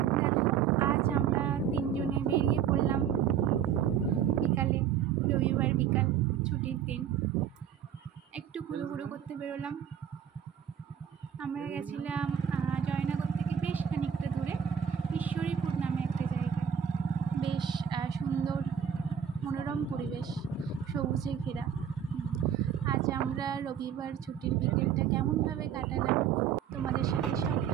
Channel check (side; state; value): left; quieter; 8.6 dB